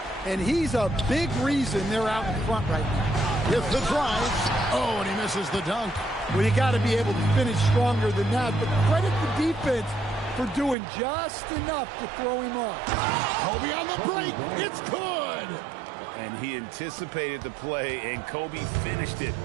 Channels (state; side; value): drops out; left; at 10.8 s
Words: And he's a big reason they're out in front right now. with the drive. Oh, and he misses the dunk. Well, you got to be able to finish stronger than that, but credit the defense for doing just enough to throw him off. Kobe on the break. It's good. And he anticipated the play, and Kobe finished it